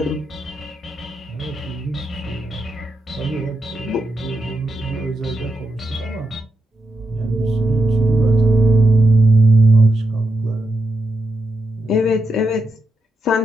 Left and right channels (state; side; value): normal; both; correlation 0.85